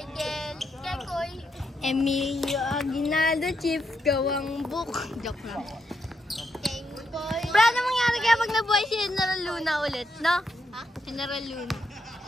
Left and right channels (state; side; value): normal; both; correlation 0.80